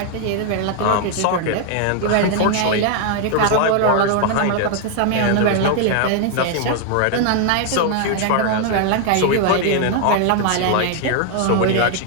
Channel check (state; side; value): different; both; correlation 0.00